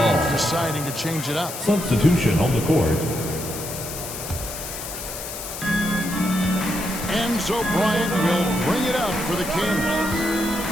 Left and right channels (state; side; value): noise; left; hiss, 8 dB below the sound